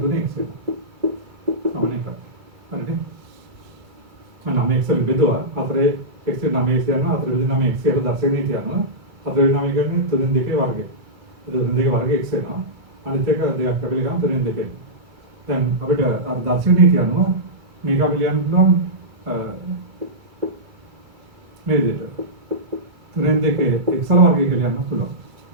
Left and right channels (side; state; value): left; late; 2.3 ms